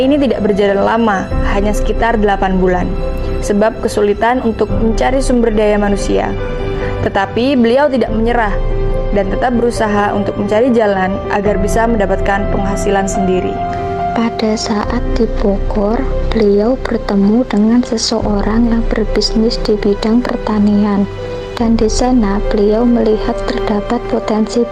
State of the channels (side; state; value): both; identical; correlation 1.00